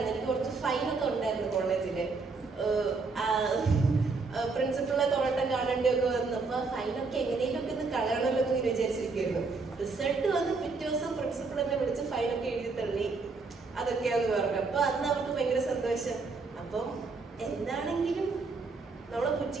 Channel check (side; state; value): left; quieter; 4.2 dB